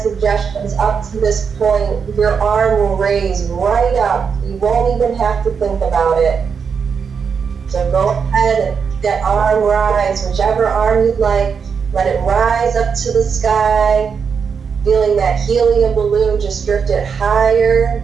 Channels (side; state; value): left; quieter; 6.2 dB